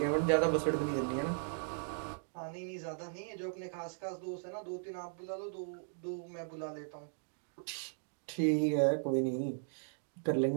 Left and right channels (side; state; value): left; silent; digital silence